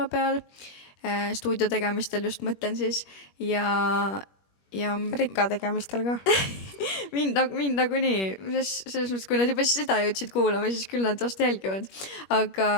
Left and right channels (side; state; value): right; late; 21 ms